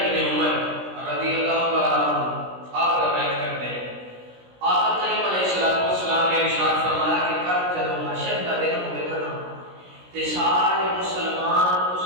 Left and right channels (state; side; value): late; left; 16 ms